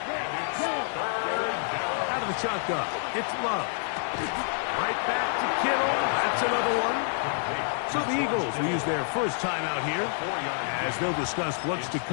Out of the shotgun, it's Love. Right back to Kittle. That's another one. So the Eagles will use their first time out here as they'll discuss what's to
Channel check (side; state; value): right; silent; 59 dB below the other